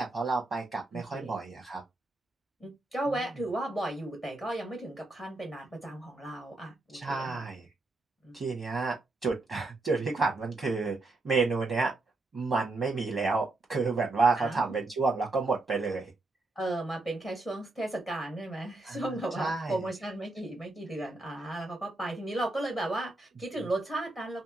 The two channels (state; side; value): quieter; left; 3.0 dB